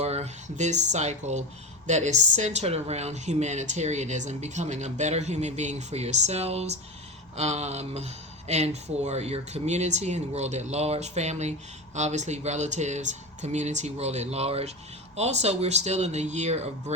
this cycle that is centered around humanitarianism, becoming a better human being for yourselves, and for your community and the world at large, family, obviously relatives, community, world at large. Also, we're still in the year of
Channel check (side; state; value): both; normal; correlation 0.21